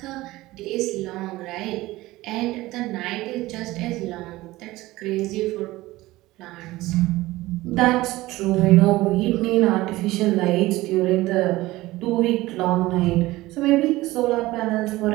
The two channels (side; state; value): left; quieter; 18.4 dB